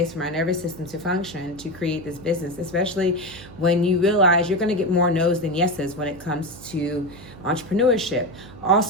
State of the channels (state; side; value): noise; right; hum, 18 dB below the sound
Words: for my nervous system to function to create this business, especially when you realize you're going to get more no's than yeses when it comes to entrepreneurship.